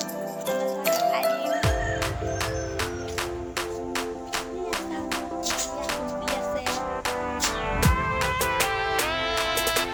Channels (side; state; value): both; identical; correlation 1.00